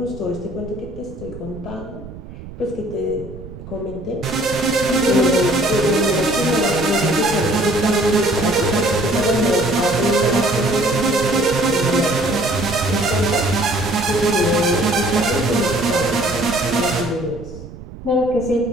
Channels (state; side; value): noise; right; rumble, 14 dB below the sound